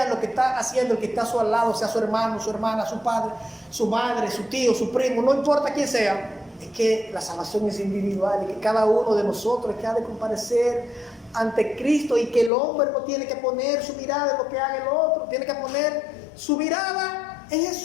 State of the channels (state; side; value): drops out; right; at 12.5 s